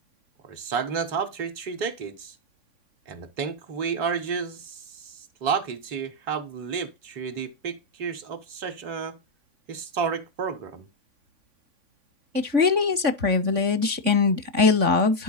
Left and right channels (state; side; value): late; left; 3.5 ms